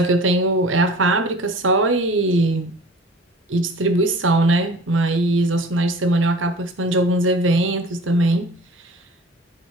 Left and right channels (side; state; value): both; normal; correlation 0.44